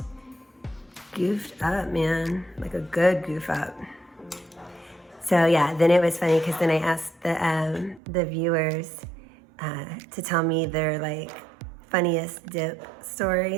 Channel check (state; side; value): drops out; left; at 8.0 s